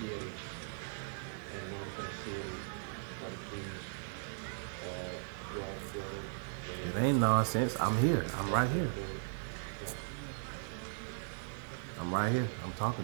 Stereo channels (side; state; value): left; silent; digital silence